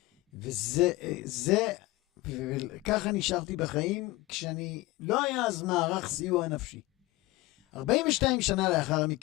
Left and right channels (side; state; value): right; quieter; 20.1 dB